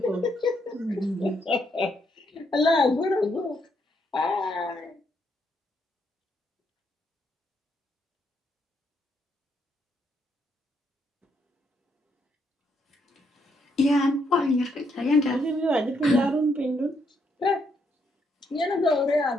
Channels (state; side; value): normal; both; correlation 0.75